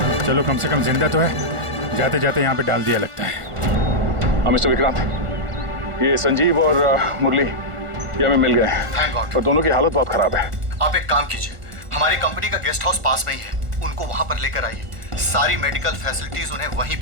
चलो कम से कम जिंदा तो है, जाते जाते यहाँ पे डाल दिया लगता है। हाँ मिस्टर विक्रांत, ये संजीव और मुरली ये हमें मिल गए हैं। Thank God. पर दोनों की हालत बहुत खराब है। आप एक काम कीजिए, हमारी कंपनी का गेस्ट हाउस पास में ही है, उनको वहां पर लेकर आइए। सारी मेडिकल फैसिलिटीज उन्हें वहीं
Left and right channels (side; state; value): left; late; 1.4 ms